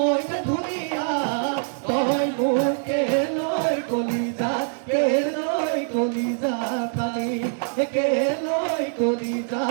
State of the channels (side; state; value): left; silent; digital silence